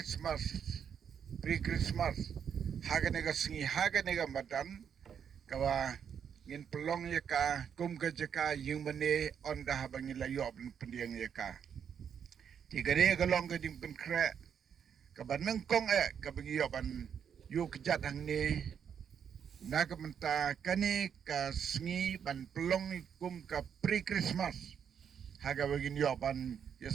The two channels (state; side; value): quieter; left; 7.8 dB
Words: pre-Christmas haganega singi haganega madan kawa ngin pelong ya ka kum ka jaka yung mane on da bang ila yo ban pendiang ya ka tigare ka long ka ding pen kre ka ban nangkong ka bang yo ban yu kejat hang ni nakamenta kani ka singi ban pelong kum ka pre-Christmas haga bagin yo ban ya